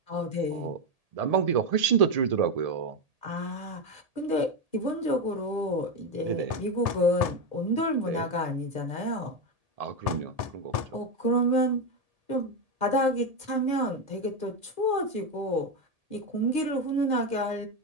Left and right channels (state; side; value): late; left; 1.8 ms